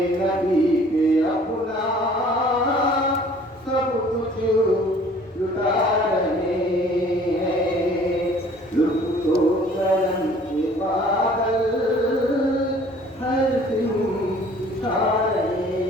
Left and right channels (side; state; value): both; normal; correlation 0.53